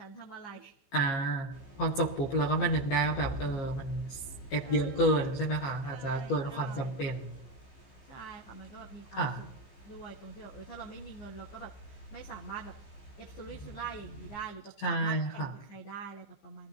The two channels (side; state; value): right; late; 15 ms